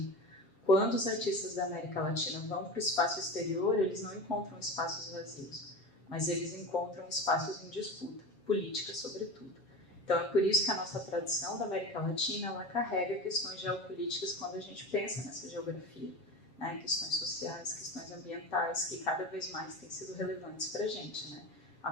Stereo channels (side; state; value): right; late; 7.3 ms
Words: Quando os artistas da América Latina vão para o espaço exterior, eles não encontram espaços vazios, mas eles encontram espaços em disputa, política sobretudo. Então é por isso que a nossa tradição da América Latina, ela carrega questões geopolíticas quando a gente pensa nessa geografia, né? Questões sociais, questões ambientais, que cada vez mais têm sido relevantes para a gente, né?